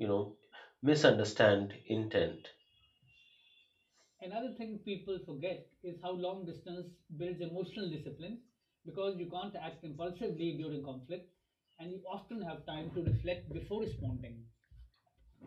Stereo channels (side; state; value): both; identical; correlation 1.00